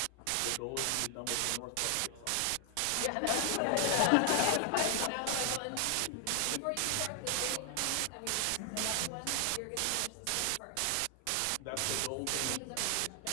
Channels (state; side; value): different; both; correlation 0.00